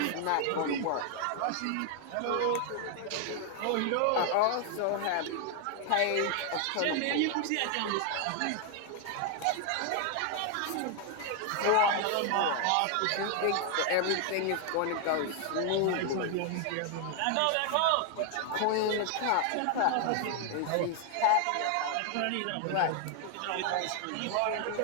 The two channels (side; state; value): both; different; correlation 0.00